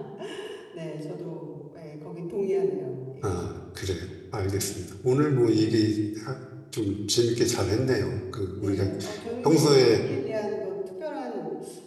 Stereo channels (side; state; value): both; identical; correlation 1.00